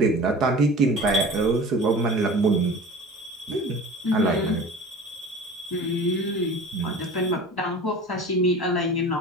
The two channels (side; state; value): both; normal; correlation 0.39